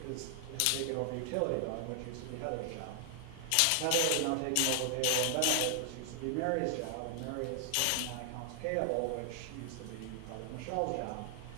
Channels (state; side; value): different; both; correlation 0.00